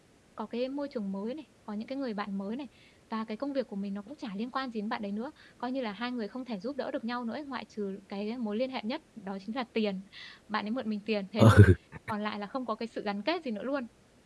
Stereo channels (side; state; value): both; identical; correlation 1.00